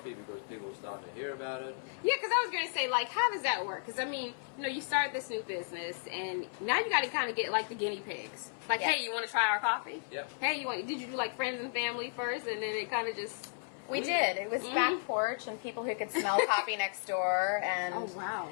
because people were starting to hear about it. Yeah, because I was going to say, like, how does that work? Because, I mean, you know, you started this new business, and now you got to kind of get, like, the guinea pigs. Like, hey, you want to try our coffee? Yeah. Hey, did you do, like, friends and family first, and then it kind of just... We did. It was back porch and people who could smell coffee next door. And, oh, wow.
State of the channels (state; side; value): silent; right; 55 dB below the other